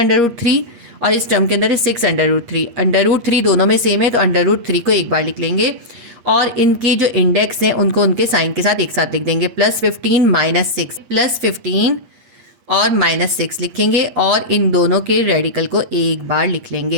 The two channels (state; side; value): late; left; 8.4 ms